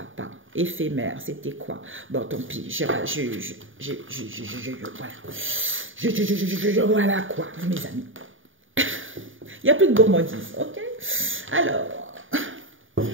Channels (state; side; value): late; left; 0.57 ms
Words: Éphémère, c'était quoi? Bon, tant pis. Voilà quoi, mes amis. Il n'y a plus de gourmandise, ok? Alors,